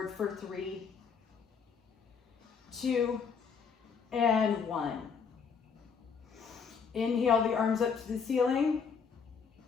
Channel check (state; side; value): quieter; right; 6.0 dB